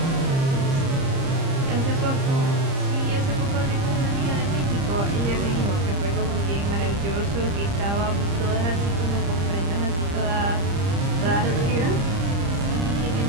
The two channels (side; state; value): left; late; 30 ms